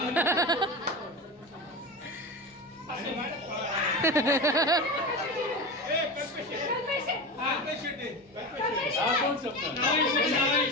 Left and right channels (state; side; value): normal; both; correlation 0.25